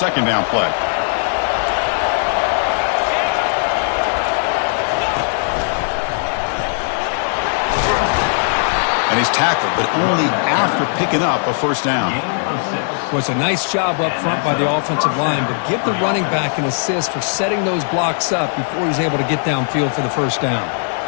down play. And he's tackled, but only after picking up a first down. Was a nice job up front by the offensive line, but give the running back an assist for setting those blocks up before he's able to get downfield for the first down.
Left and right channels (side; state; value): right; silent; digital silence